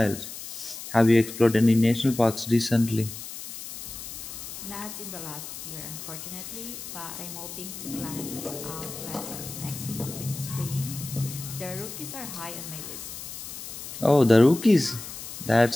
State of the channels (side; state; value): left; noise; hiss, 10 dB below the sound